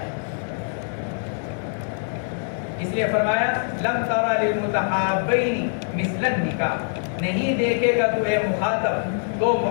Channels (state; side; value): silent; right; digital silence